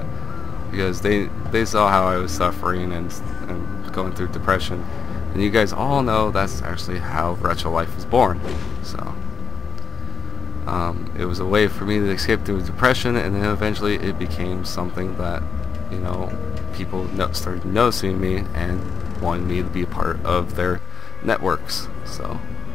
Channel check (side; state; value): right; quieter; 6.4 dB